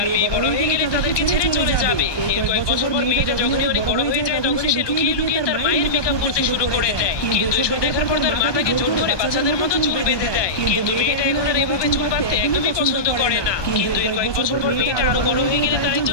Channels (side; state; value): right; late; 1.2 ms